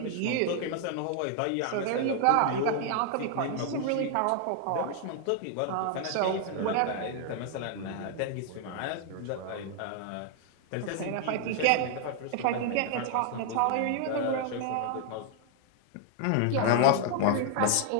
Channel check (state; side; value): different; both; correlation 0.00